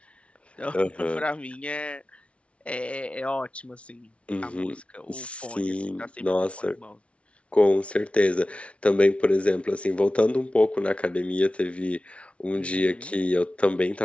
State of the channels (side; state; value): right; late; 0.062 ms